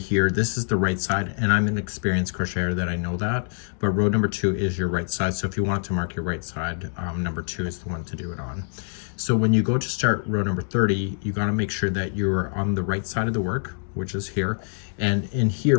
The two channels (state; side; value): silent; right; digital silence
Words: this is the right side, and I'm an experienced crocheter that I know that, but row number 2 is your right side. So if you want to mark your right side, number 2 is the one to do it on. So when you go to start row number 30, you got to make sure that you're on the right side of the work, which is here. And in